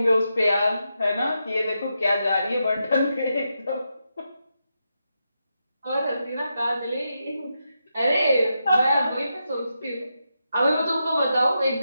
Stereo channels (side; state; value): both; inverted; correlation -0.85